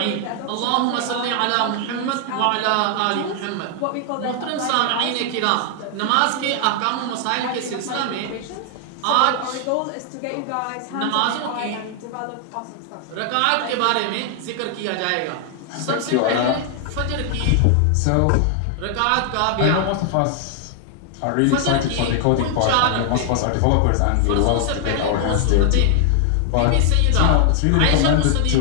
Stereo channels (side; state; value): both; different; correlation 0.00